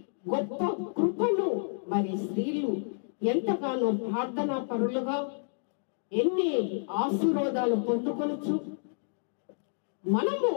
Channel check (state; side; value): silent; right; digital silence